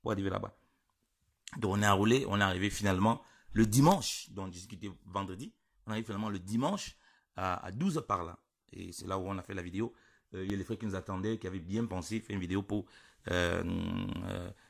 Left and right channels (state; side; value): identical; both; correlation 1.00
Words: pour arriver là-bas. Donc on est enroulé, on est arrivé finalement le dimanche, donc on discutait vendredi. On arrive finalement le dimanche à 12 h par là. Et c'est là où on a fait la vidéo. Il y a les frères qui nous attendaient, qui avaient bien pensé faire une vidéo pour